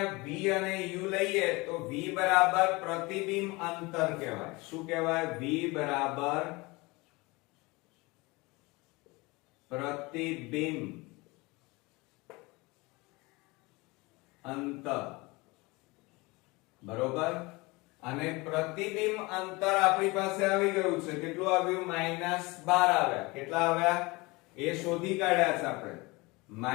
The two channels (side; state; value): right; quieter; 24.0 dB